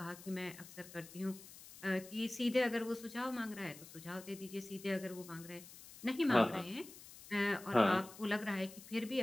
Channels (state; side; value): noise; left; hiss, 17 dB below the sound